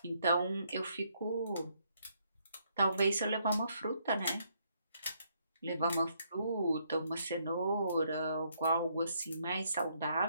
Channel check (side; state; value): both; inverted; correlation -0.72